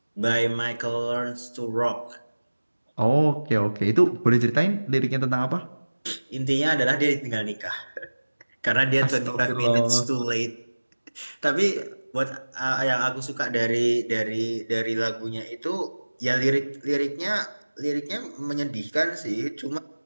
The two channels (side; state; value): both; inverted; correlation -1.00